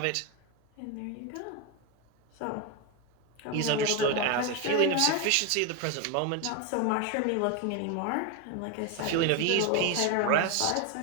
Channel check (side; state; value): both; different; correlation 0.02